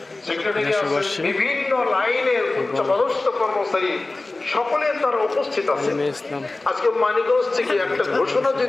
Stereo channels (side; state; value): right; quieter; 3.1 dB